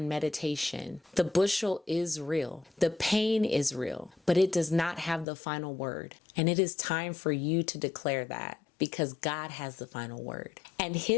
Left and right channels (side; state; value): right; drops out; at 5.2 s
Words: meditation. The bushel is real. The pain is real, but it does not have the final word. And it is time for you to declare that, because God has the final word. And